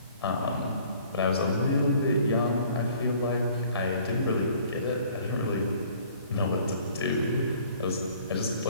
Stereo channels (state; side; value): inverted; both; correlation -0.55